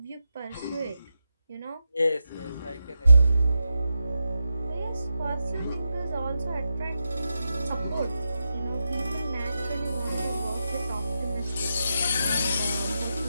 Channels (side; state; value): both; inverted; correlation -0.87